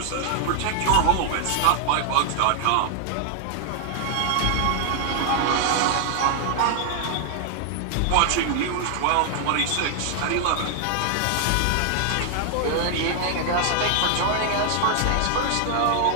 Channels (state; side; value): different; both; correlation 0.00